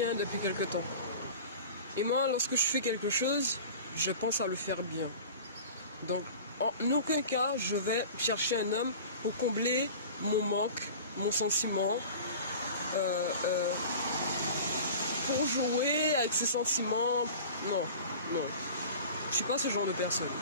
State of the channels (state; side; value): inverted; both; correlation -0.38